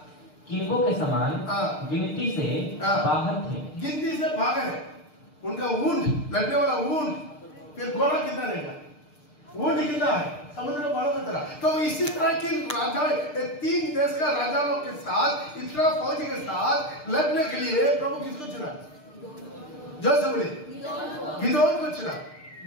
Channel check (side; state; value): right; late; 6.6 ms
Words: किनकों के समान गिनती से बाहर थे। गिनती से बाहर है उनका ऊंट, लड़ने वाला ऊंट। फिर घोड़ा कितना रहेगा? ऊंट कितना है? समुद्र का बालू की तरह। तो इसी तरह की राजा 3 देश का राजाओं के साथ, इतना फौज के साथ लड़ने के लिए प्रभु किसको चुना? जो से बोले गिदोन को चुना।